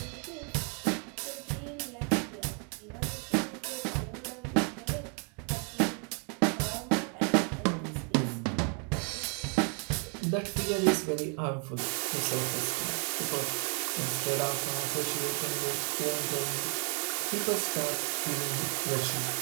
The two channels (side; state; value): left; quieter; 39.2 dB